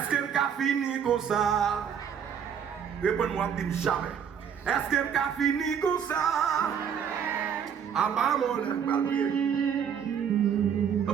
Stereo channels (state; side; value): quieter; left; 7.7 dB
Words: que je fini comme ça? Réponds-moi, dis jamais. Est-ce que je fini comme ça? Ah bah mon Dieu.